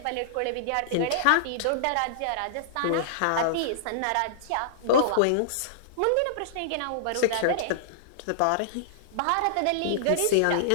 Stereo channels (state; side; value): different; both; correlation -0.02